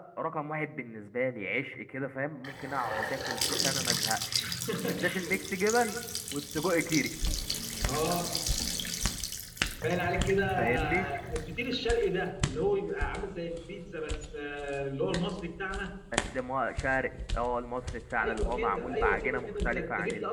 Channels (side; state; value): both; identical; correlation 1.00